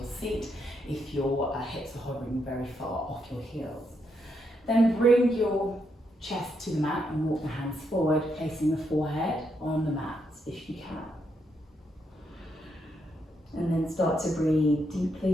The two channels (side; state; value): both; normal; correlation 0.79